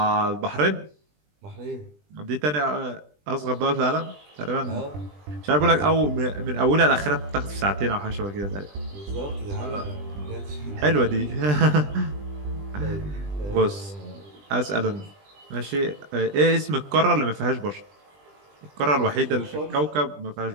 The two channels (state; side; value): late; left; 20 ms